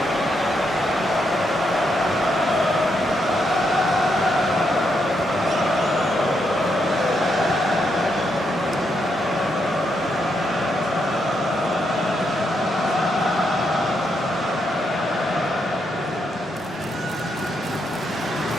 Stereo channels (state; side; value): normal; both; correlation 0.79